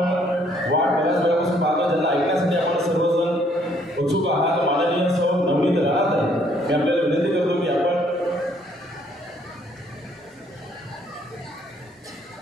वाट बऱ्याच वेळापासून पाहतो, ज्यांना ऐकण्यासाठी आपण सर्वजण उत्सुक आहात, माननीय सौ नवनीत राहत आहे. मी आपल्याला विनंती करतो की आपण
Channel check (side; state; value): both; normal; correlation 0.65